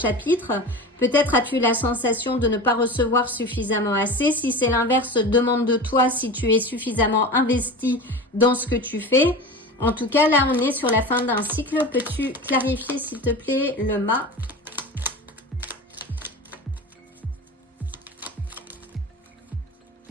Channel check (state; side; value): normal; both; correlation 0.31